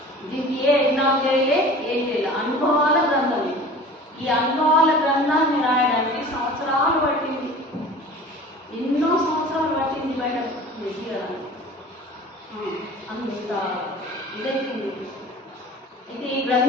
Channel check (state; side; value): normal; both; correlation 0.41